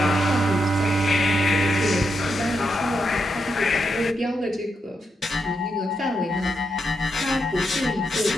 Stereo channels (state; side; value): normal; both; correlation 0.83